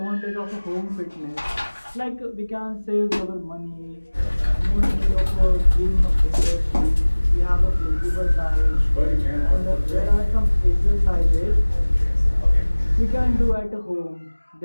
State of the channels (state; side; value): inverted; both; correlation -1.00